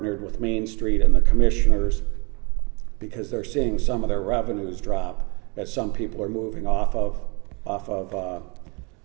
with Main Street and the commissioners because they're seeing some of their revenues drop as some people are moving off of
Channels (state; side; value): quieter; left; 30.6 dB